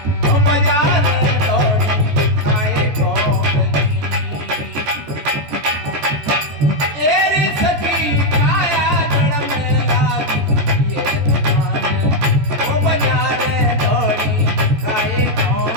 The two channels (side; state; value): left; late; 14 ms